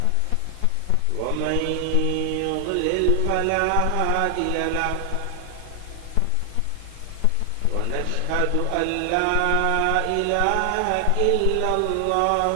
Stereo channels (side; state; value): both; different; correlation 0.00